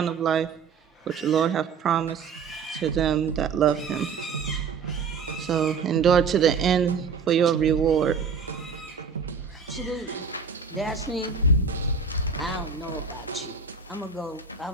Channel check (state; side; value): quieter; left; 5.6 dB